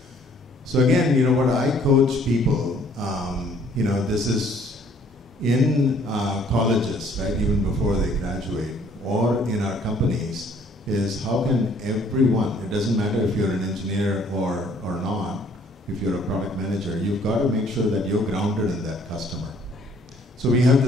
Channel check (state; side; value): normal; both; correlation 0.60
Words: So again, what I coach people, this is in colleges, right, even before they graduate, or in our companies, is how can everyone, it doesn't matter if you're an engineer or not, if you're a product manager, you've got to make sure that you're grounded in that customer. So we have